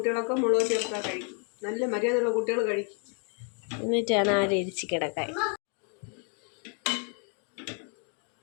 മുളക് ചേർത്താൽ കഴിക്കും. നല്ല മര്യാദയുള്ള കുട്ടികൾ കഴിക്കും. എന്നിട്ടാണ് ആ രീതിച്ച് കിടക്കാൻ.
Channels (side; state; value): right; quieter; 39.8 dB